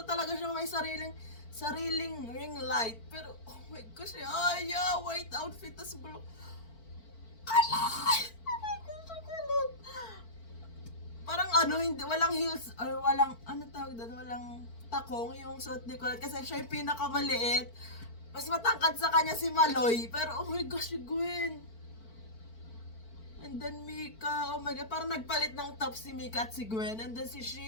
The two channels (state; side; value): late; right; 4.5 ms